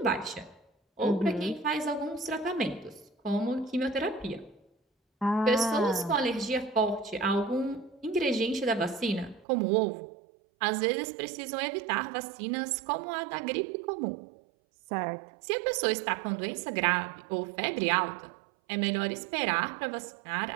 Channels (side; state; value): left; drops out; at 9.5 s